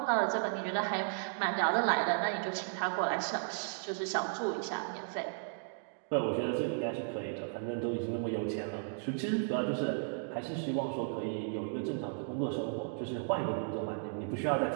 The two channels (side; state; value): left; silent; digital silence